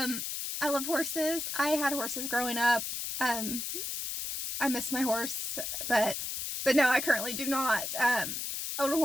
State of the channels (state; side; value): noise; left; hiss, 4 dB below the sound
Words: love horses. I had horses growing up. I miss my horse, but no, I currently do not own a